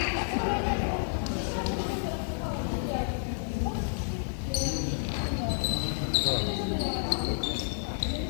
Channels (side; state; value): right; silent; 58 dB below the other